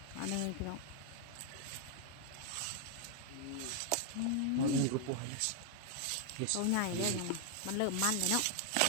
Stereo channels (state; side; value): different; both; correlation 0.00